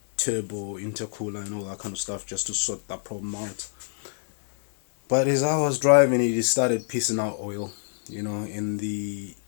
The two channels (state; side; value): silent; right; digital silence